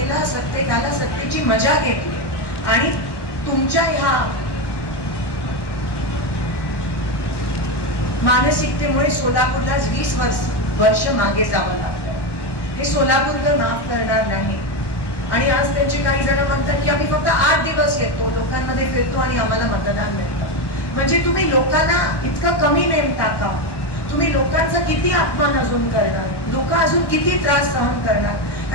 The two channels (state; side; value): late; right; 1.1 ms